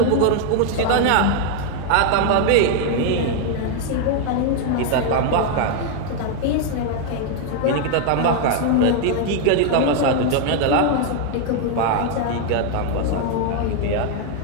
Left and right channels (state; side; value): different; both; correlation 0.00